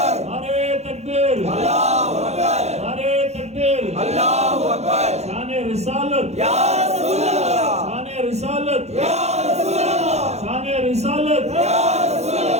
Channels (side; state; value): left; late; 0.32 ms